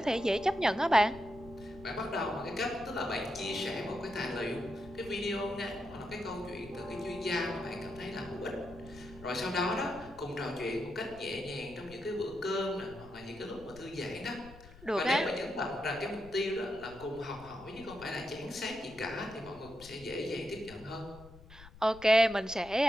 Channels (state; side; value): noise; left; rumble, 20 dB below the sound